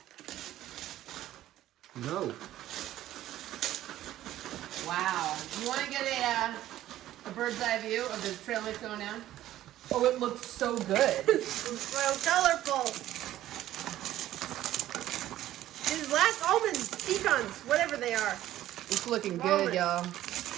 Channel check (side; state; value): left; quieter; 13.6 dB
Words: No. Wow. You want to get a bird's eye view of the trail mix going down? Oh, it looks so good. It's so colorful. These last almonds, pecans, whatever they are. It's looking good, y'all.